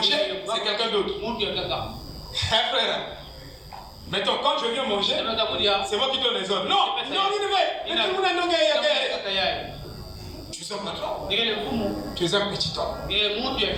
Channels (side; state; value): both; identical; correlation 1.00